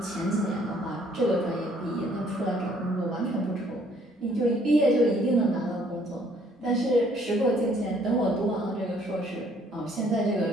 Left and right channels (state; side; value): normal; both; correlation 0.63